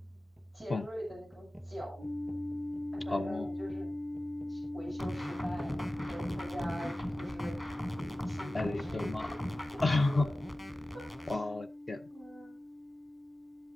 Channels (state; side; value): normal; both; correlation 0.96